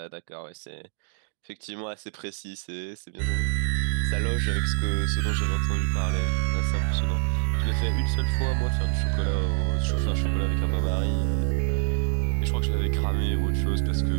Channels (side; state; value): left; silent; digital silence